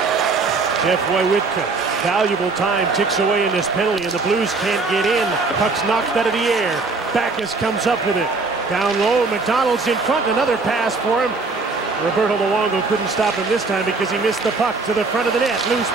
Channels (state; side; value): quieter; left; 4.0 dB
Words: Jeff Wojciechowski, valuable time, ticks away in this penalty, and the Blues can't get in. The puck's knocked out of the air. Backus comes up with it. Down low, McDonald's in front, another pass for him. Roberto Luongo couldn't stop him this time because he missed the puck to the front of the net. Loose